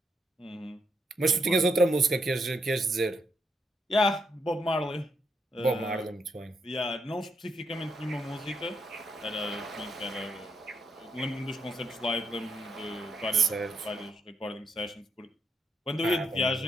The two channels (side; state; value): both; normal; correlation 0.78